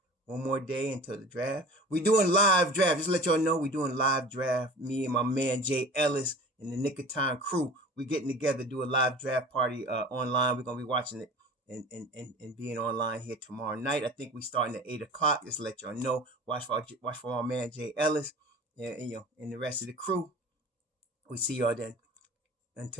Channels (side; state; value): both; normal; correlation 0.40